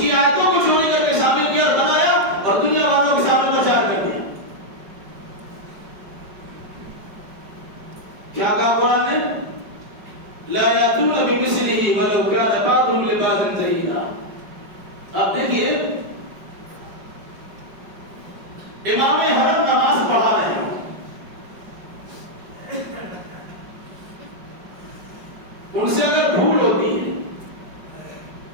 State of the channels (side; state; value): left; late; 5.2 ms